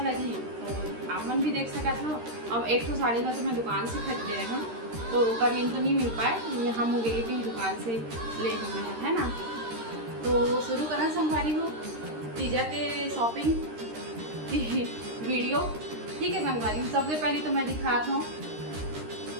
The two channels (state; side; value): late; left; 13 ms